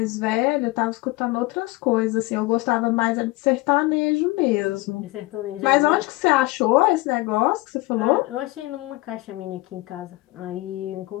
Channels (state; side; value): quieter; right; 21.3 dB